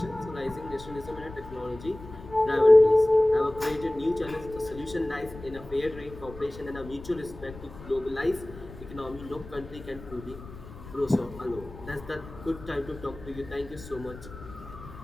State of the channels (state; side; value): noise; left; rumble, 16 dB below the sound